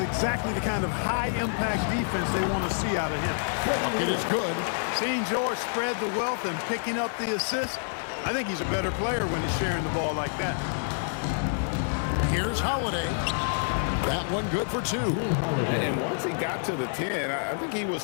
the kind of high-impact defense they want to see out of him. Bucket is good. Seeing George spread the wealth and picking up the assist, I think he's a better player when he's sharing the ball like that. Here's Holiday. That one good for two. And once he got to the 10, I think he was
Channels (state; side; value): silent; right; 60 dB below the other